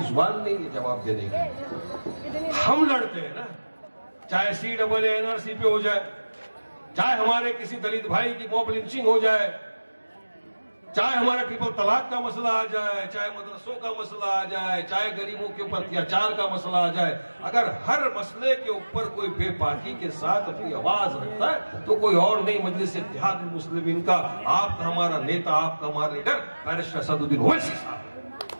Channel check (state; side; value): inverted; both; correlation -1.00